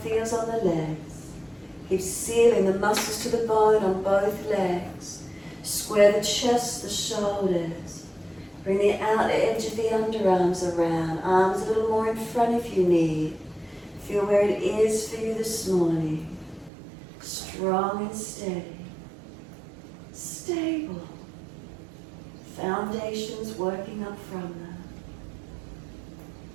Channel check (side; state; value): left; drops out; at 16.7 s